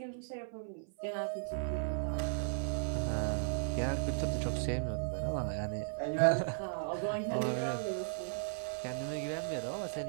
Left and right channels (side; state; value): left; silent; 54 dB below the other